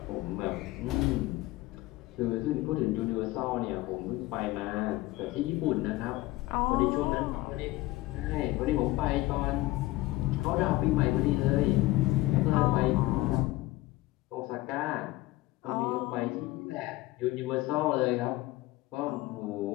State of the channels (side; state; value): right; quieter; 18.5 dB